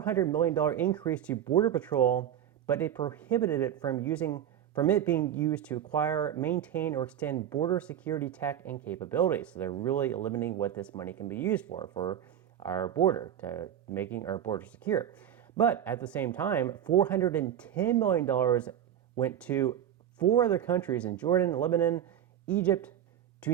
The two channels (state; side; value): quieter; left; 10.2 dB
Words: million increase to Border Patrol, but it prohibited it from it being used to acquire, maintain, or extend border security tech and capabilities. So they're really limiting what this money can be used for our border, to making our border secure. But at the same time, $410 million went to 4 other countries in Jordan, Lebanon, Egypt,